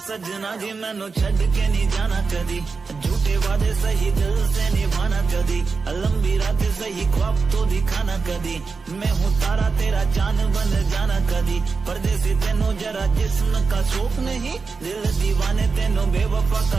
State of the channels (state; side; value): quieter; left; 4.6 dB